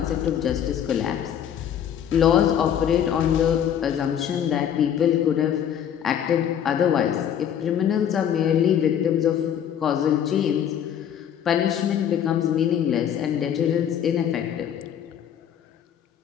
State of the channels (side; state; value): right; quieter; 9.3 dB